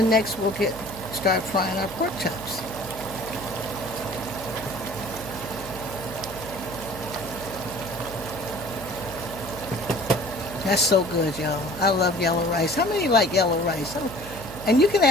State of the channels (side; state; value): right; noise; hum, 12 dB below the sound